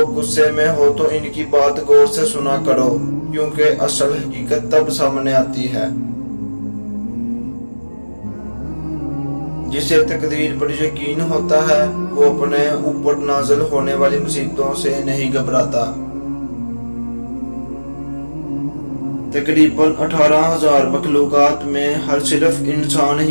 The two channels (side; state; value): both; inverted; correlation -1.00